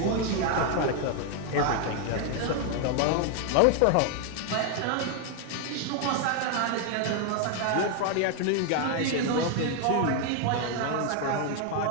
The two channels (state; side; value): different; both; correlation 0.01